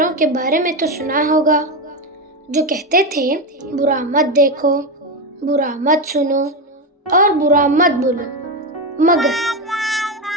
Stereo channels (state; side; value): normal; both; correlation 0.13